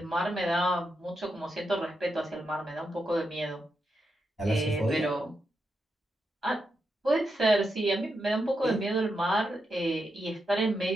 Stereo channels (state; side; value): normal; both; correlation 0.85